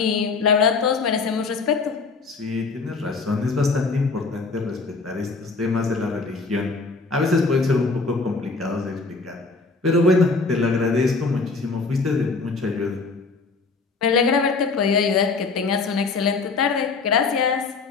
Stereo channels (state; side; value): quieter; right; 4.2 dB